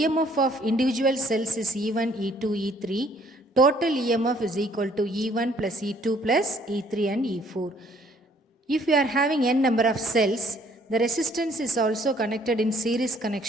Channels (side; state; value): both; normal; correlation 0.62